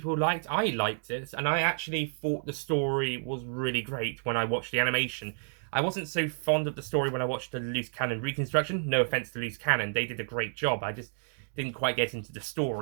liked. I liked it, and I actually thought the story was really great when I watched the animation. I wasn't so fond of the story when I watched the Loose Cannon reconstruction. No offense to Loose Cannon, they did a great job. I just didn't quite get into the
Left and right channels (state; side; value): silent; left; digital silence